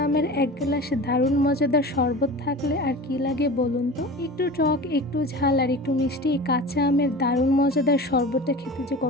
আমের এক গ্লাস দারুণ মজাদার শরবত থাকলে আর কি লাগে বলুন তো। একটু টক, একটু ঝাল আর একটু মিষ্টি এই কাঁচা আমের দারুণ মজাদার শরবতটা খেতে যে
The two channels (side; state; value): both; normal; correlation 0.34